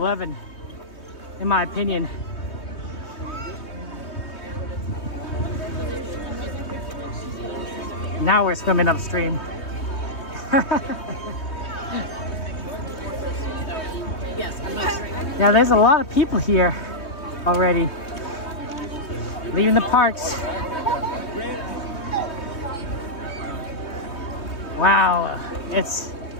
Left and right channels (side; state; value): right; late; 3.2 ms